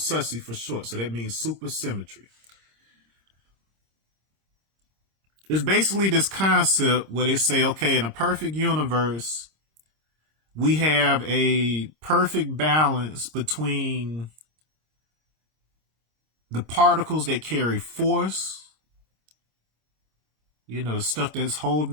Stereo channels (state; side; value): late; left; 26 ms